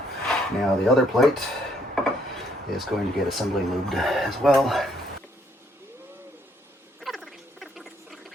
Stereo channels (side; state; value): both; normal; correlation 0.69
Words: Now the other plate is going to get assembly lubed as well.